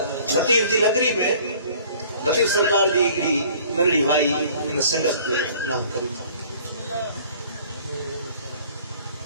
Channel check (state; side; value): inverted; both; correlation -0.52